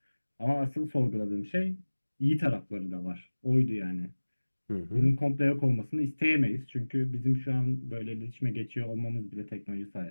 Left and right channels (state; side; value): inverted; both; correlation -1.00